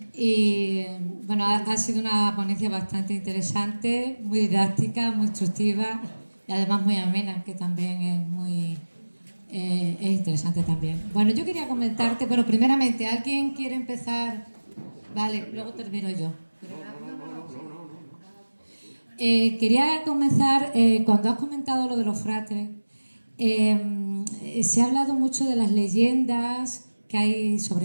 Y bueno, ha sido una ponencia bastante interesante, muy didáctica, muy instructiva y además muy amena, que también es interesante también. Bueno, yo quería comentarte, pero primeramente, ¿alguien quiere empezar? Vale, luego termino yo. Quería comenzar, cuando has comentado lo de los fratres, se ha hablado mucho de las leyendas que hay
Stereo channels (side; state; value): both; inverted; correlation -1.00